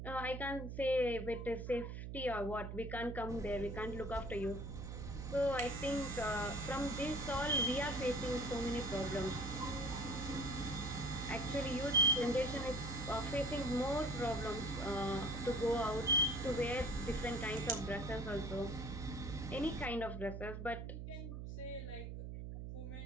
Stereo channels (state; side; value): noise; right; hum, 7 dB below the sound